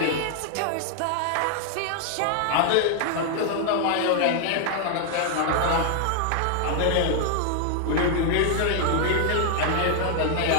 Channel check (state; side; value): different; both; correlation 0.00